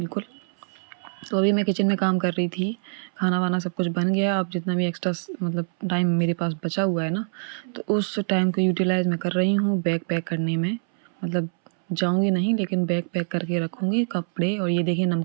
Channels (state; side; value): silent; left; 62 dB below the other